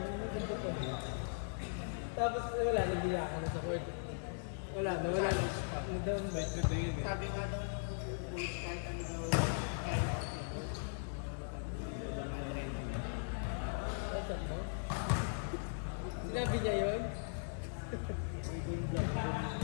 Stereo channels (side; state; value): right; silent; digital silence